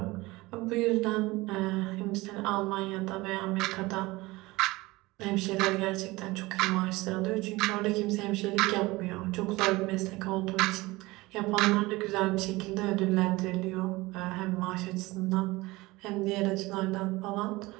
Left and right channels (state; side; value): quieter; left; 21.1 dB